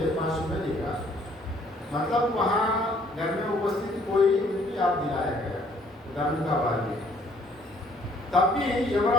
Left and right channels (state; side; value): normal; both; correlation 0.63